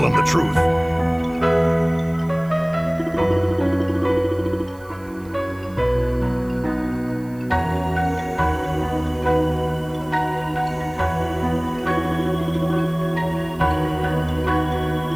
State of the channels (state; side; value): noise; right; hiss, 27 dB below the sound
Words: him the truth.